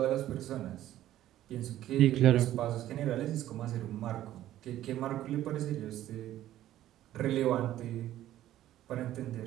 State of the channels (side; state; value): left; quieter; 13.3 dB